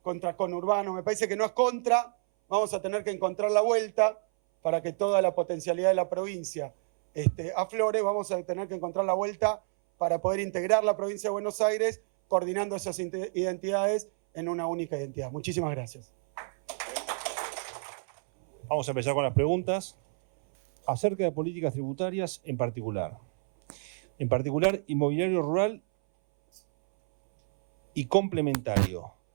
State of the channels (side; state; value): left; silent; 59 dB below the other